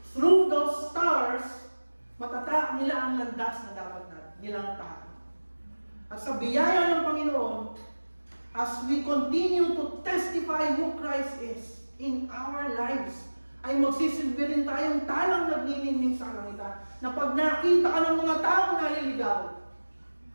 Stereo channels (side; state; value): both; inverted; correlation -1.00